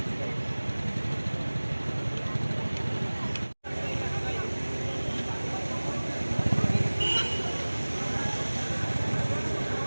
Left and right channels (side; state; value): both; inverted; correlation -1.00